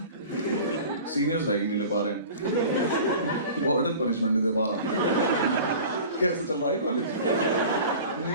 सीनियर्स रैगिंग नहीं ले पा रहे हैं, वार्डन पनिशमेंट नहीं दे पा रहा, कैसे चल रहा है कॉलेज?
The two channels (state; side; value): inverted; both; correlation -0.40